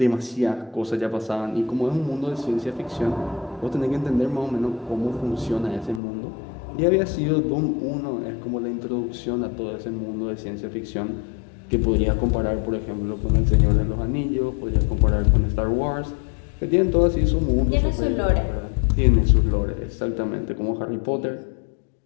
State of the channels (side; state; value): right; drops out; at 6.0 s